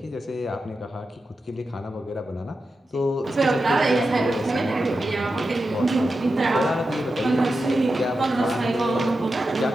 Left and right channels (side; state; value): both; normal; correlation 0.90